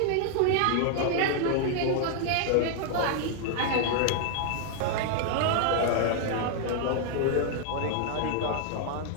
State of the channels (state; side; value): different; both; correlation 0.00